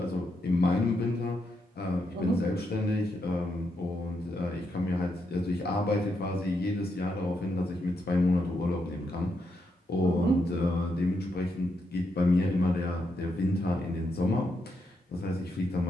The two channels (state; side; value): normal; both; correlation 0.81